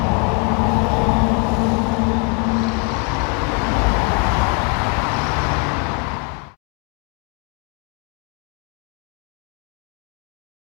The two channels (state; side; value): quieter; right; 33.2 dB